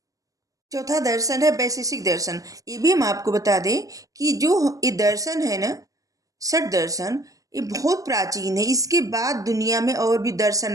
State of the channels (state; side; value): late; left; 0.16 ms